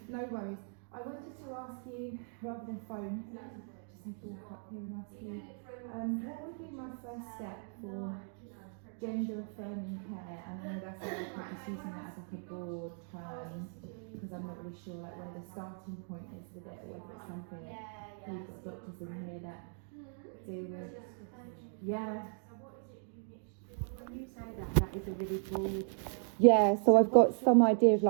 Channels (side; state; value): left; silent; 53 dB below the other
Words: No worries. I wanted to ask you, rather than phone, just have to walk up here and ask you, what would be my first step for gender affirming care? And I know that's like I'm just using that as like a broad term because I'm not really sure like when the starting point is with it, or if it's something that we've got doctors in here that deal with. Yeah. When you say that is a really broad. Yeah, so I've got some idea of